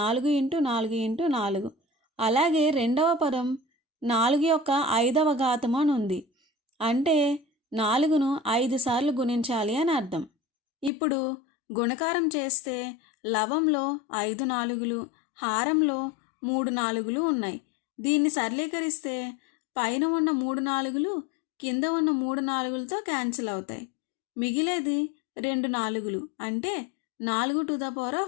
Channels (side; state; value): right; drops out; at 10.9 s